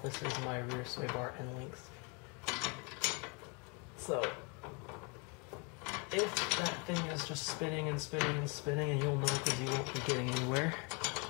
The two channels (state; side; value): quieter; right; 32.8 dB